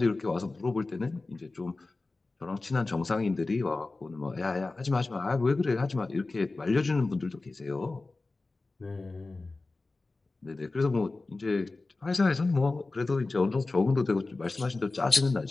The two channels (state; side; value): quieter; right; 3.4 dB